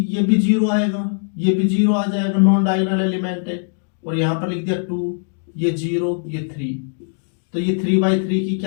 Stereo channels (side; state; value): right; silent; digital silence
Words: भी जीरो आएगा, ये भी जीरो आ जाएगा, नॉन डायगोनल एलिमेंट है। और यहाँ पर लिख दिया 2, ये 0 ये 3। तो ये 3x3 की